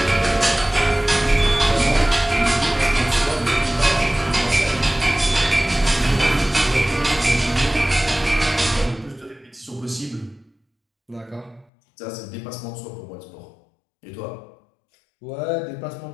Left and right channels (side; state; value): right; drops out; at 11.7 s